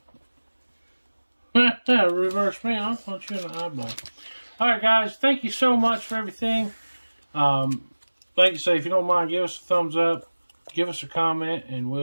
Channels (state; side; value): inverted; both; correlation -1.00